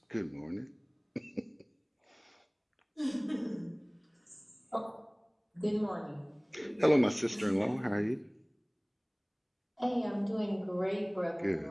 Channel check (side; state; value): both; identical; correlation 1.00